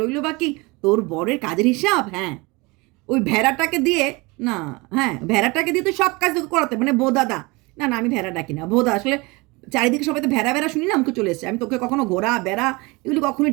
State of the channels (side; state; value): left; quieter; 25.2 dB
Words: রইল বাকি তোর বরের কাজের হিসাব। হ্যাঁ, ওই ভেড়াটাকে দিয়ে না, হ্যাঁ ভেড়াটাকে দিয়ে তো সব কাজ তোকে করাতে, মানে বোদাদা। না না, আমি ভেড়া ডাকি না, ভোদা। আসলে চারিদিকে সবাই তো ভেড়া ভেড়া শুনি না, আমাকে চলে এসছে। আমি তোকে কখনো ঘোড়া বেড়া এগুলি